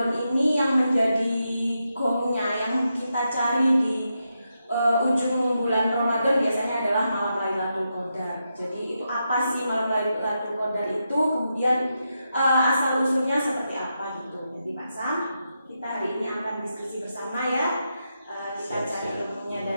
ini yang menjadi gongnya, yang kita cari di ujung bulan Ramadan biasanya adalah malam Lailatul Qadar. Jadi itu apa sih malam Lailatul Qadar itu? Kemudian asal usulnya seperti apa gitu. Jadi Pak Sam, kita hari ini akan diskusi bersama ya. Kita cari ilmunya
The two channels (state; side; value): inverted; both; correlation -0.85